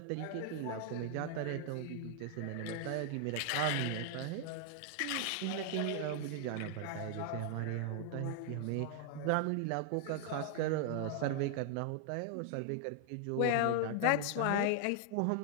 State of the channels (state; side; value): different; both; correlation 0.00